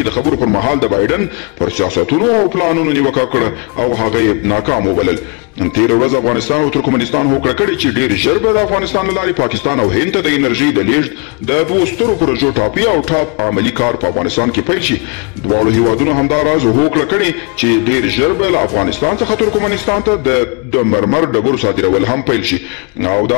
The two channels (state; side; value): quieter; right; 32.1 dB